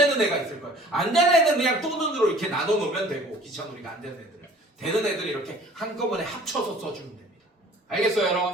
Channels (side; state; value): both; normal; correlation 0.50